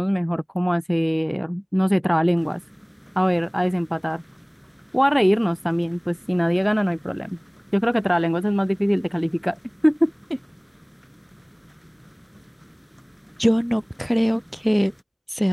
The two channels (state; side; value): identical; both; correlation 1.00